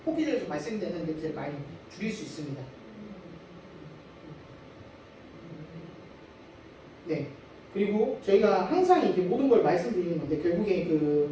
뽑기에서 발생되는 냄새를 많이 줄일 수 있습니다. 네. 그리고 저희가 항상 이제 모든 걸 말씀드리는 건데 결국에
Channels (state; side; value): identical; both; correlation 1.00